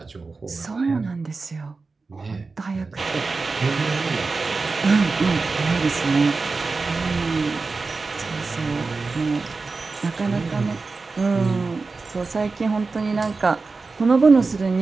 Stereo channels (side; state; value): left; quieter; 4.1 dB